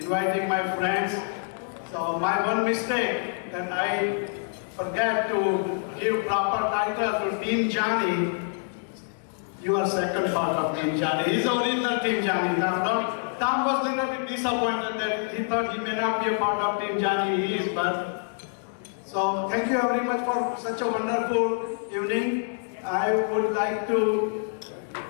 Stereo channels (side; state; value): right; silent; digital silence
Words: my friends. So my one mistake that I forget to give proper title to Team Jani. You are second part of Team Jani. He's the original Team Jani. Tom was a little bit disappointed that he thought he may not be a part of Team Jani. He is, but so thank you very much for such a wonderful evening. I would like to,